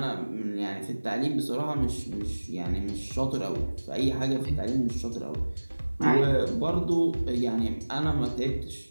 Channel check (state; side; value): inverted; both; correlation -1.00